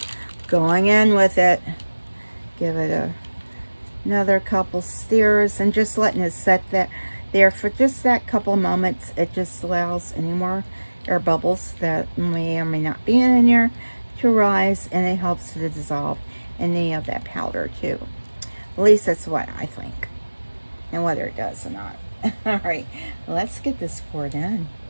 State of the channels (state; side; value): inverted; both; correlation -1.00